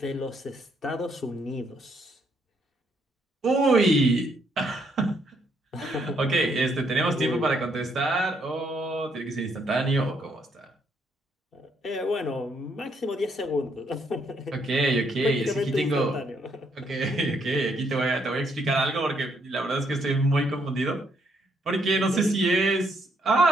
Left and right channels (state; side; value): normal; both; correlation 0.72